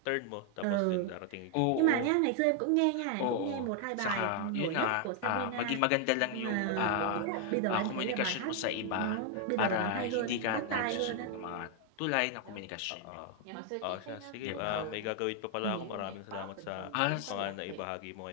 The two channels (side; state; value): both; different; correlation 0.00